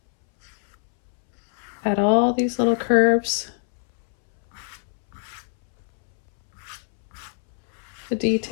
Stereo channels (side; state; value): right; silent; 63 dB below the other